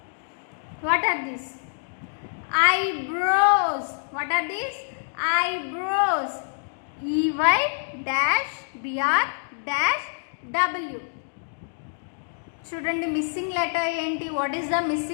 What are these? Eyebrows. What are these? Eyebrows. EY-BR-W. చూడండి missing letter ఏంటి? What is the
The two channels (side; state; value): right; silent; digital silence